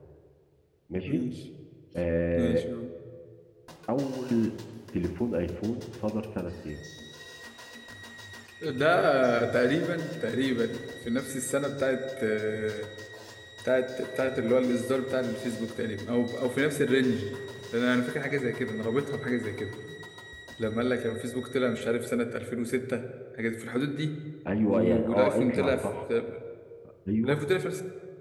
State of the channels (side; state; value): both; identical; correlation 1.00